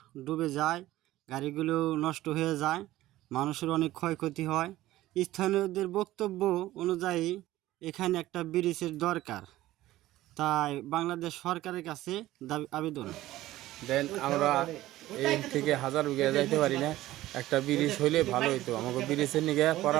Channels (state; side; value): quieter; left; 15.8 dB